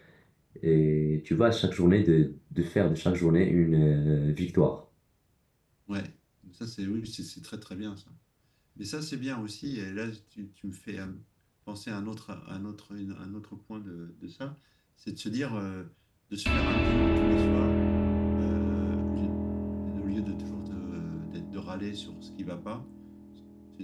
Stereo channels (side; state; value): both; identical; correlation 1.00